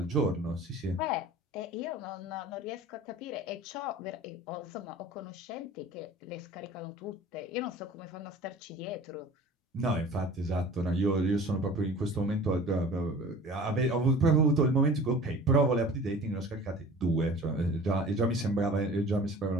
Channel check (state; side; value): normal; both; correlation 0.43